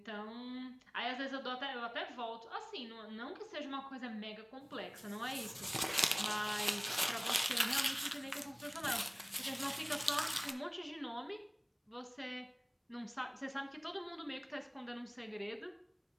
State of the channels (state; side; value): identical; both; correlation 1.00